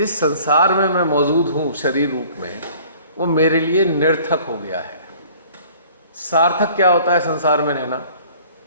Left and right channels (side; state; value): both; inverted; correlation -0.51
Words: संसार में मैं मौजूद हूँ शरीर रूप में, वो मेरे लिए निरर्थक हो गया है। सार्थक क्या होता है संसार में रहना?